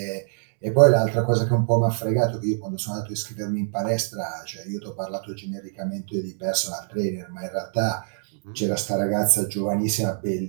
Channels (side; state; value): left; silent; digital silence